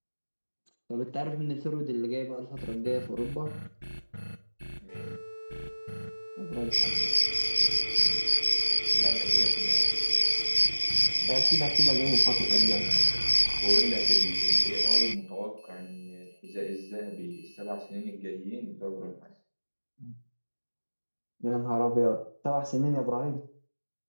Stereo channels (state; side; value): inverted; both; correlation -1.00